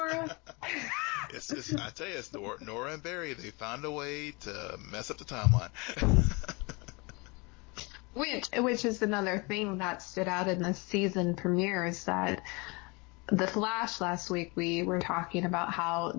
I tell you, it's Nora and Barry. They found a way to mess up the timeline. Which is another thing that stood out in the season premiere, is that The Flash last week, we were talking about how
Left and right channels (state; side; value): quieter; right; 27.8 dB